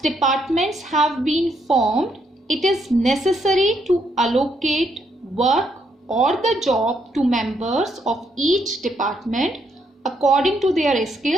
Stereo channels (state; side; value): normal; both; correlation 0.75